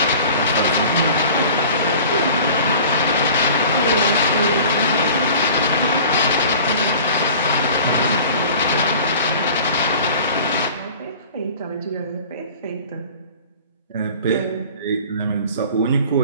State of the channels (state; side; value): inverted; both; correlation -0.43